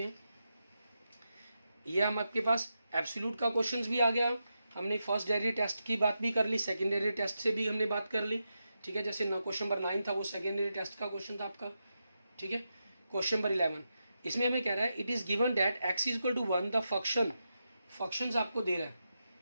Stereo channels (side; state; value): both; inverted; correlation -0.87